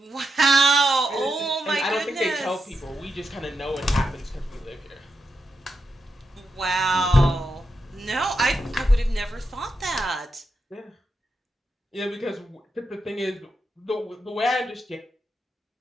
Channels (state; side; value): normal; both; correlation 0.86